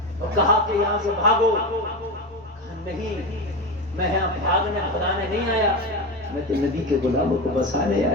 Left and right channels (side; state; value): both; normal; correlation 0.20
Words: اور کہا کہ یہاں سے بھاگو. نہیں, میں یہاں بھاگنے بھگانے نہیں آیا, میں تو نبی کے غلاموں کو بسانے